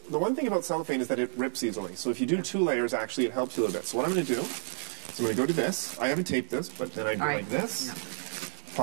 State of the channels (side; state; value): left; silent; 58 dB below the other